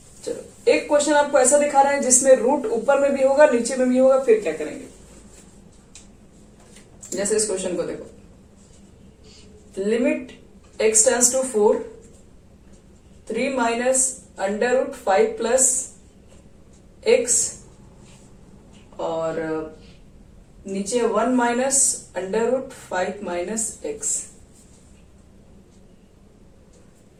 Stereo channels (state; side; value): identical; both; correlation 1.00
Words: चलो, एक क्वेश्चन आपको ऐसा दिखा रहा है जिसमें रूट ऊपर में भी होगा नीचे में भी होगा, फिर क्या करेंगे? जैसे इस क्वेश्चन को देखो, limit x tends to 4 3 minus √5 plus x और नीचे 1 माइनस √5 माइनस x।